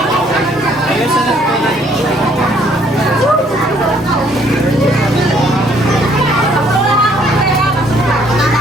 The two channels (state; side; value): normal; both; correlation 0.64